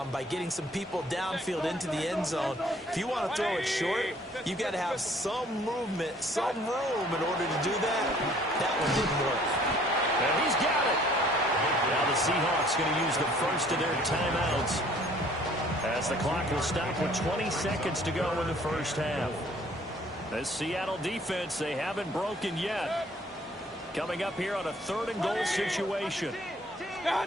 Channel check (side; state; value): both; normal; correlation 0.57